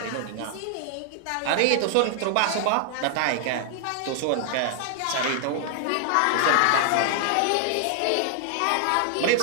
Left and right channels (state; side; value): different; both; correlation 0.00